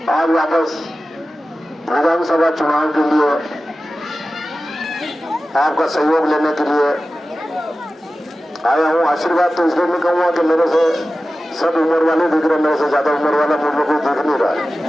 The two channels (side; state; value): both; normal; correlation 0.95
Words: आज वापस विधानसभा चुनाव के लिए आपका सहयोग लेने के लिए आया हूँ। आशीर्वाद तो इसलिए नहीं कहूँगा कि मेरे से सब उम्र वाले दिख रहे, मेरे से ज्यादा उम्र वाला मुझे कोई दिख नहीं रहा है,